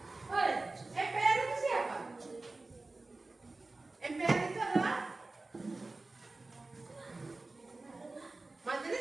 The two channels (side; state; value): left; quieter; 3.3 dB